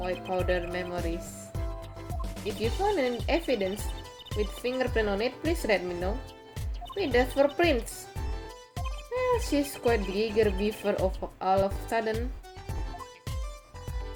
powder memories. If you find any evidence with fingerprint on it, please let me know. Wait, that's for prints. Well, she's quite the eager beaver of all of a sudden.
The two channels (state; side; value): identical; both; correlation 1.00